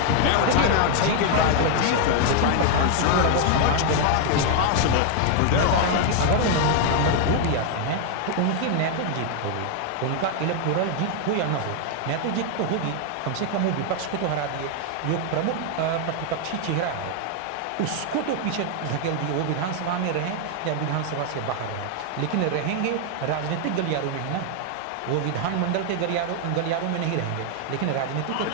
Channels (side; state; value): both; different; correlation 0.00